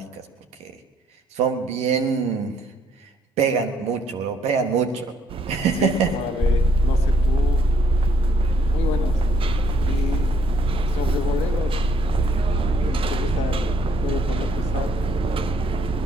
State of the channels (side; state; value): both; normal; correlation 0.67